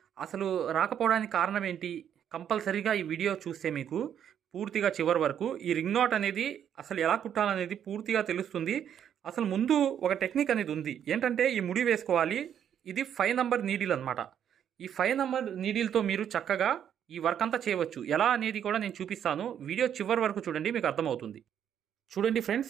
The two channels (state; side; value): quieter; left; 9.2 dB